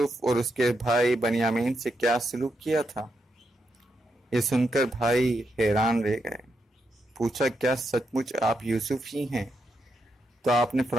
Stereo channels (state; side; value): normal; both; correlation 0.83